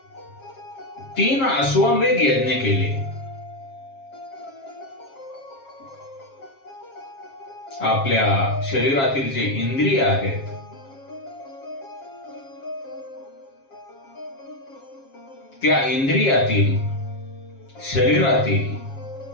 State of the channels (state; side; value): late; right; 7.4 ms